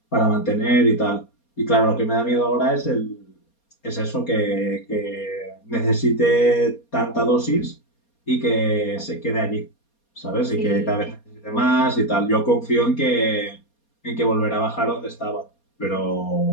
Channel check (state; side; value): late; right; 4.2 ms